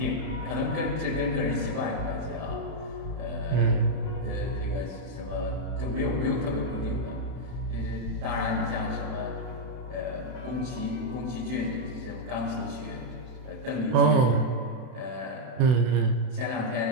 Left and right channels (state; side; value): late; left; 32 ms